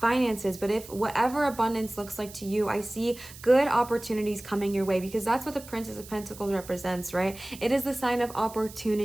but if whatever abundance looks like to you, I see good opportunities coming your way, because that's what the Princess of Pentacles represents, right? It is the sign of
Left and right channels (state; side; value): noise; right; hiss, 17 dB below the sound